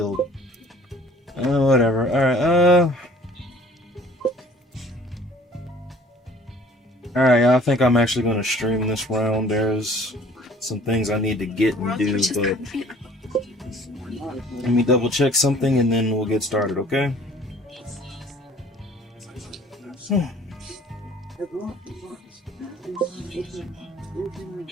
Whatever. Alright, Alright, I think I'm actually gonna stream this round. There's some things I need to get and do, but let me double check something and then we'll get started, okay?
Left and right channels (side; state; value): both; normal; correlation 0.51